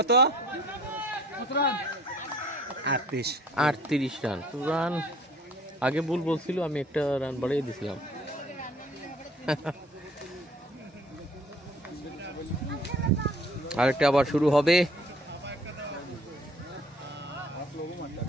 38 রান। রান আগে ভুল বলছিল, আমি একটা রান বাড়িয়ে দিছিলাম। আরেকটা আবার শুরু হবে।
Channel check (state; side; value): normal; both; correlation 0.55